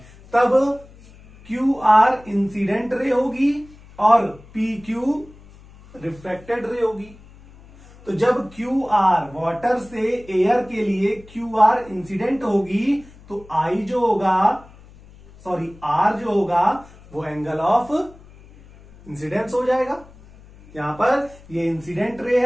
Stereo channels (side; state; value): left; noise; hum, 23 dB below the sound